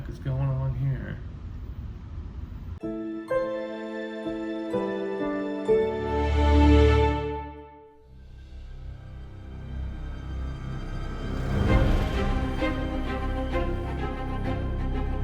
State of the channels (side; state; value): both; identical; correlation 1.00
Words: is going on here?